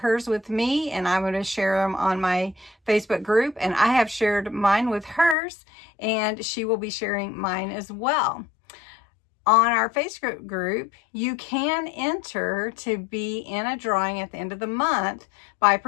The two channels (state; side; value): drops out; right; at 5.4 s